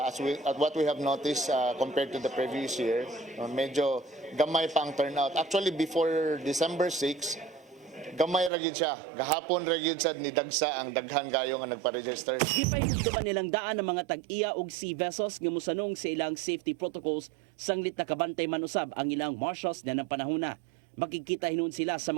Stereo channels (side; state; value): left; drops out; at 8.5 s